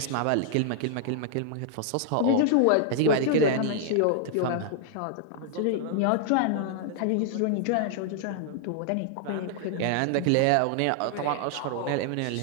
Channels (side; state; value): both; different; correlation -0.01